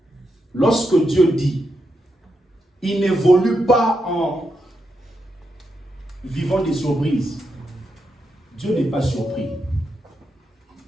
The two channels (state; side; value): normal; both; correlation 0.84